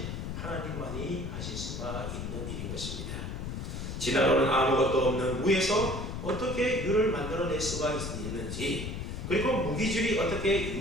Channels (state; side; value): noise; left; rumble, 5 dB below the sound